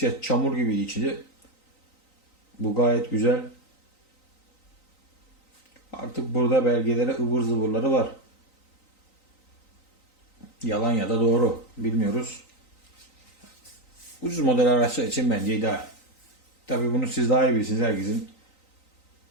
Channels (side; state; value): right; late; 3.9 ms